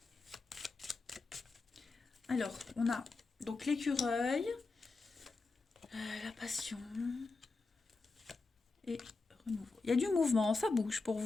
Alors, on a donc l'écureuil, la passion et renouveau. Il y a du mouvement, ça bouge pour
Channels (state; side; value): quieter; right; 3.9 dB